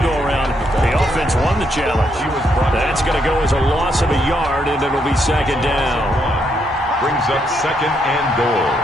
go-around, the offense won the challenge. That's going to go as a loss of a yard, and it'll be second down. Brings up 2nd and goal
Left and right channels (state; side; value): normal; both; correlation 0.76